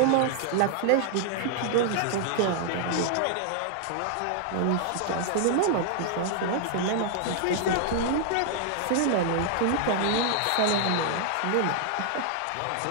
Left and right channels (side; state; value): both; different; correlation -0.01